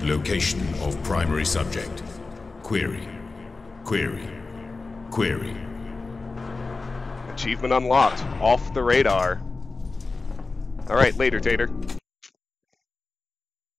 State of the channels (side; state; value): right; quieter; 3.8 dB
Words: location of primary subject. Query. Query. Query. Achievement unlocked. Off the radar. Alright, later, Tater.